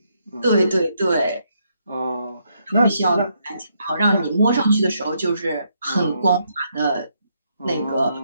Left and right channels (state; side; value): inverted; both; correlation -0.75